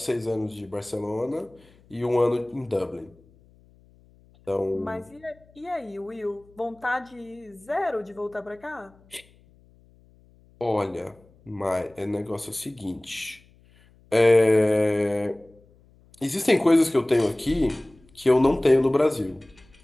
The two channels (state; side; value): noise; left; hum, 29 dB below the sound